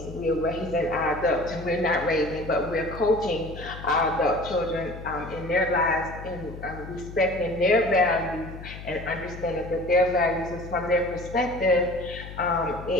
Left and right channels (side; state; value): left; noise; hum, 12 dB below the sound